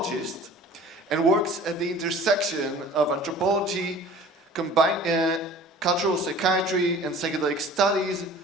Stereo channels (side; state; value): both; normal; correlation 0.45